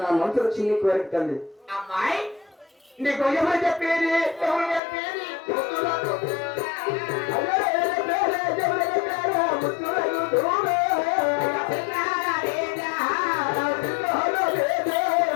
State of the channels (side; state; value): right; drops out; at 4.8 s